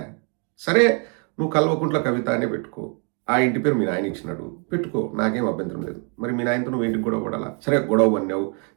సరే, నువ్వు కల్వకుంట్ల కవిత అనే పెట్టుకో. ఆ ఇంటి పేరు మీ నాయన ఇచ్చినాడు, పెట్టుకో, నాకేం అభ్యంతరం లేదు. మరి మీ నాయనతో నువ్వు ఇంటికి గొడవ పడాలా? సరే, గొడవ పడినావు,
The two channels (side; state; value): left; quieter; 37.9 dB